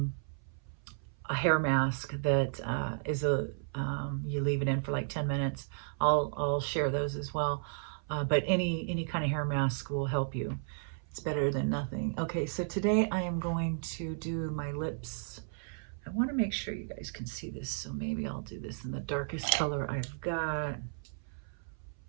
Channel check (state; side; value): silent; left; 55 dB below the other